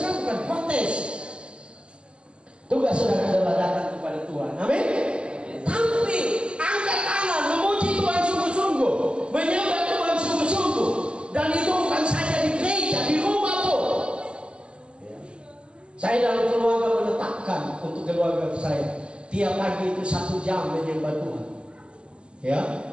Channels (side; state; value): left; late; 0.052 ms